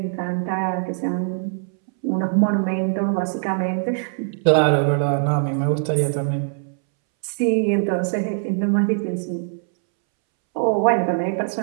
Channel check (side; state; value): left; silent; 64 dB below the other